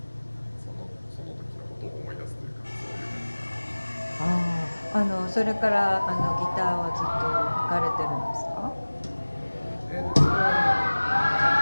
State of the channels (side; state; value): both; inverted; correlation -1.00